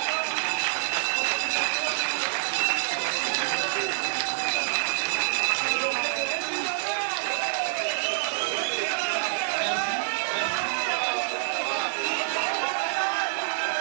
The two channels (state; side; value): silent; left; digital silence